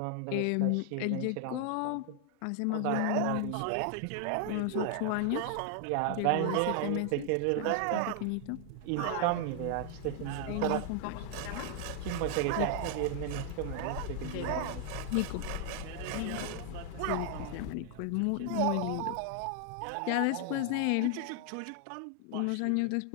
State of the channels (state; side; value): different; both; correlation 0.00